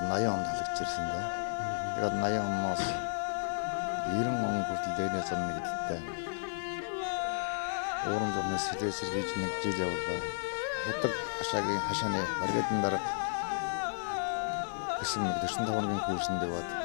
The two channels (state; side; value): silent; right; digital silence